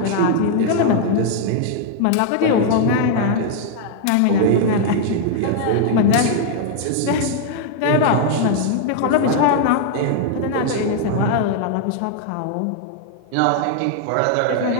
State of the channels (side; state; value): both; different; correlation 0.00